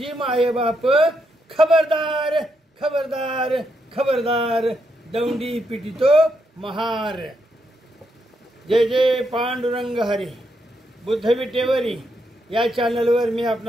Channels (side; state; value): both; normal; correlation 0.80